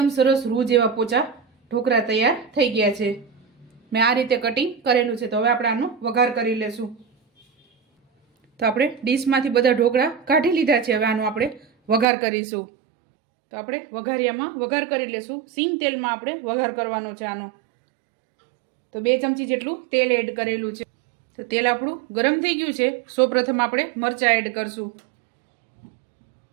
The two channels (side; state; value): left; drops out; at 12.1 s